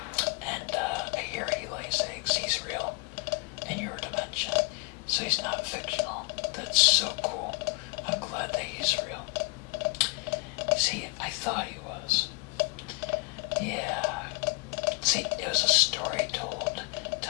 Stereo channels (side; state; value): right; quieter; 30.0 dB